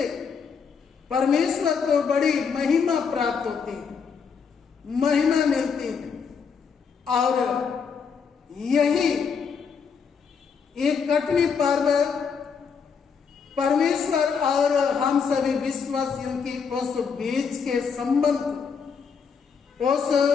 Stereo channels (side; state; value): right; quieter; 6.1 dB